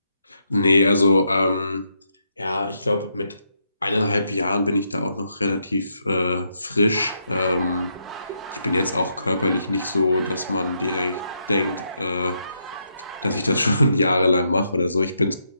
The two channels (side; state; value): both; inverted; correlation -0.78